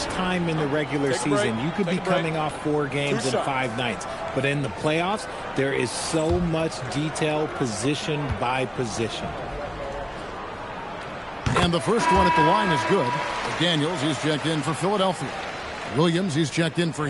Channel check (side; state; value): both; identical; correlation 1.00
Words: time in the regular season. You could be coming off 4 games in 5 nights. But in the playoffs, there is so much detail position by position. And the first one at the line is good. Daniels, he's checked in for Philadelphia. Williams, he's checked in for